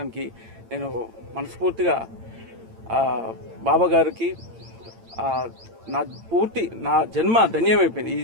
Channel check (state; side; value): late; left; 8.9 ms